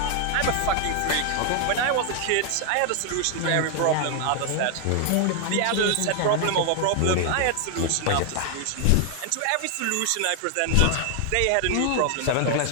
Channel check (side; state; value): both; different; correlation 0.00